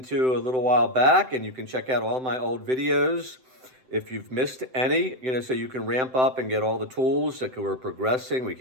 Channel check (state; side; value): late; left; 7.8 ms